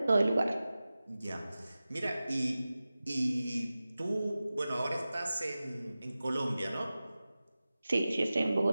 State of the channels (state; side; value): inverted; both; correlation -0.96